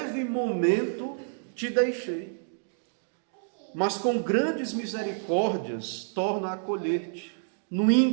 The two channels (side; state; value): left; silent; digital silence